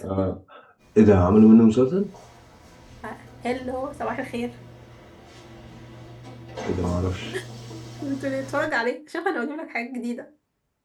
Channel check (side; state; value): both; identical; correlation 1.00